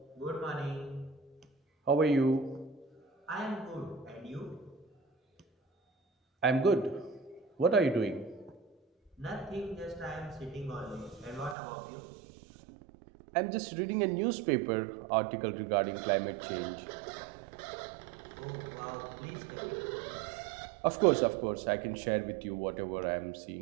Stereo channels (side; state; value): left; drops out; at 11.6 s